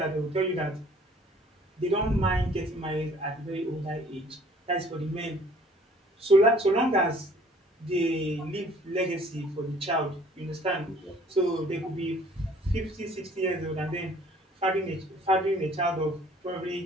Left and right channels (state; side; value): normal; both; correlation 0.55